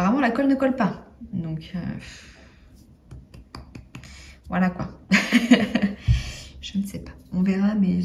la colle ne colle pas. Donc, voilà quoi. Je ne sais pas. On verra, mais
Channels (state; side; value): identical; both; correlation 1.00